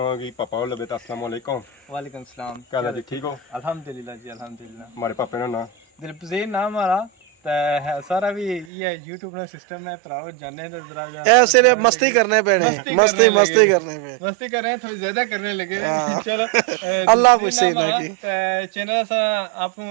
पापा लबे अस्सलाम वालेकुम। वालेकुम सलाम। क्या जी ठीक हो? अल्हम्दुलिल्लाह जी अल्हम्दुलिल्लाह। हमारे पापे का नाम दिलपजीर नाम हमारा है सारा भी ये YouTube ना सिस्टम है भराओ जाने तो जरा ऐसे मस्ती करने पे नहीं मस्ती करने पे मस्ती कर रहे हैं थोड़ी ज्यादा करने लगे चलो अल्लाह पूछे ना कि चैनल सा आप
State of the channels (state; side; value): drops out; left; at 8.7 s